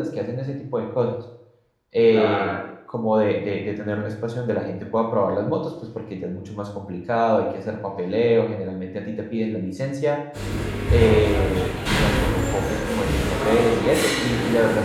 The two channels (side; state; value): both; identical; correlation 1.00